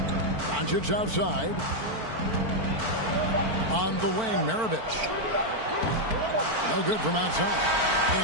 Doncic outside. On the wing, Maravich. No good from outside.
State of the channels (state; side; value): late; left; 4.5 ms